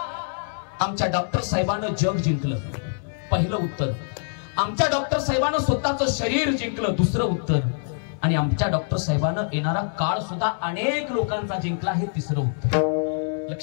आमच्या डॉक्टर साहेबांना जग जिंकलं, पहिलं उत्तर. आमच्या डॉक्टर साहेबांना स्वतःचं शरीर जिंकलं, दुसरं उत्तर. आणि आमच्या डॉक्टर साहेबांना येणारा काळ सुद्धा अनेक लोकांचा जिंकला, हे तिसरं उत्तर.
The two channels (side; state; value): right; silent; 62 dB below the other